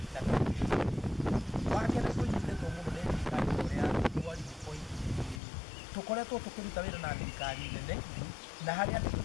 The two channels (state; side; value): drops out; right; at 5.4 s